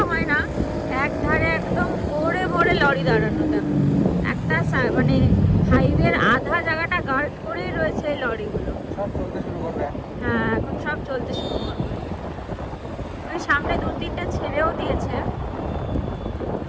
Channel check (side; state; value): both; identical; correlation 1.00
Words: হয় না, এক ধারে একদম ভরে লরি দাঁড়ানো। দেখো একটা মানে হাইওয়ের আধা জায়গাটা গার্ড করেই রয়েছে এই লরিগুলো। সব চলতে শুরু করবে। হ্যাঁ এখন সব চলতে শুরু করবে। ওই সামনে 2-3টা ছেড়েও দিয়েছে।